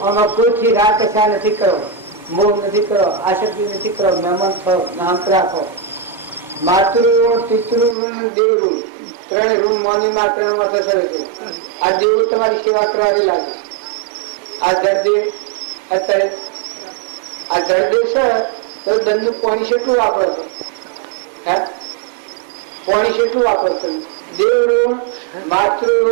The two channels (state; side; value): drops out; left; at 8.0 s